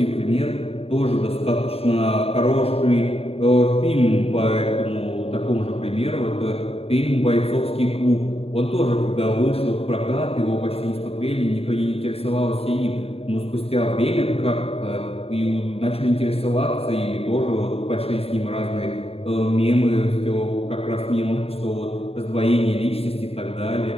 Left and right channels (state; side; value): late; right; 0.28 ms